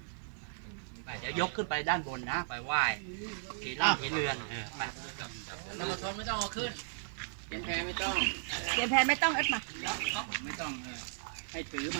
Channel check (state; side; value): silent; left; digital silence